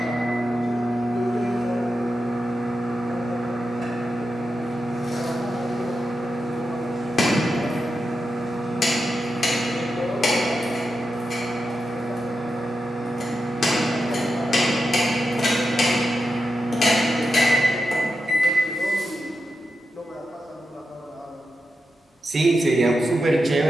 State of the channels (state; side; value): normal; both; correlation 0.88